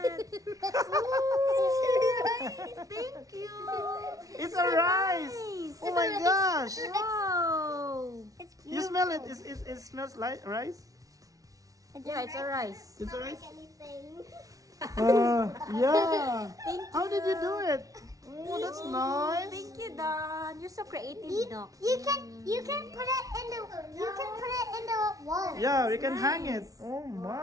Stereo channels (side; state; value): left; late; 0.17 ms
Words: Thank you! It's a rice. Nice! Oh my gosh. Wow! You smell it. It smells like rice. Yeah, it's a rice. It's a rice. Anything. Yeah. Thank you. How did you do it? Oh, that's nice. Thank you, Don. you're so creative, no? You can put it in the wall. Yeah, we can hang it. Oh